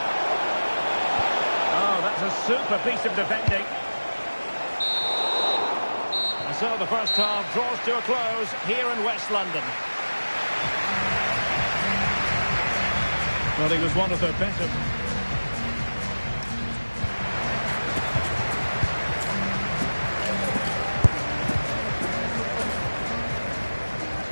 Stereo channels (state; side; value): inverted; both; correlation -1.00